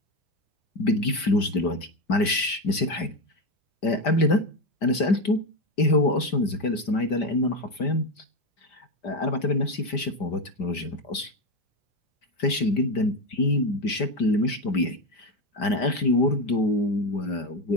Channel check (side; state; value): right; late; 5.0 ms